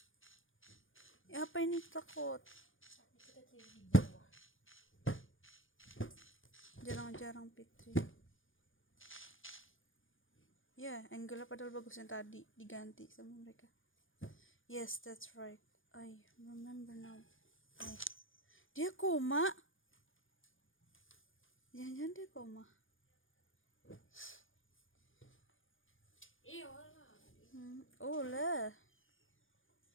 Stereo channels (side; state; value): right; late; 0.58 ms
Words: Ya, apa ini takut? Jarang-jarang Fitri. Ya, angle padahal bagus yang tadi diganti sama mereka. Yes, that's right. I remember now. Dia koma. Jangan-jangan dia koma. Oh lah.